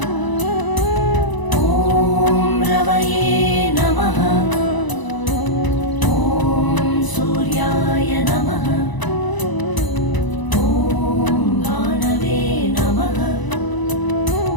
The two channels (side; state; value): right; late; 1.0 ms